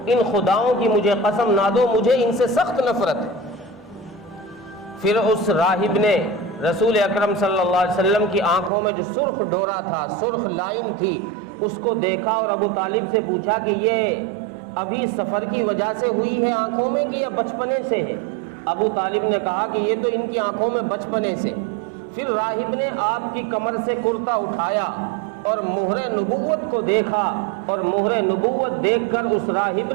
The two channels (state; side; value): drops out; left; at 8.7 s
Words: ان خداؤں کی مجھے قسم نہ دو، مجھے ان سے سخت نفرت ہے۔ پھر اس راہب نے رسول اکرم صلی اللہ علیہ وسلم کی آنکھوں میں جو سرخ ڈورا تھا، سرخ لائن تھی، اس کو دیکھا اور ابو طالب سے پوچھا کہ یہ ابھی سفر کی وجہ سے ہوئی ہے آنکھوں میں کہ یا بچپنے سے ہے؟ ابو طالب نے کہا کہ یہ تو ان کی آنکھوں میں بچپنے سے۔ پھر راہب نے آپ کی کمر سے کرتا اٹھایا اور مہر نبوت کو دیکھا، اور مہر نبوت دیکھ کر اس راہب